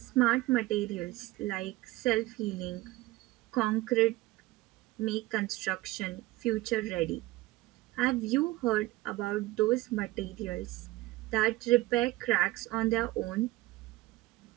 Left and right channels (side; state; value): left; quieter; 18.6 dB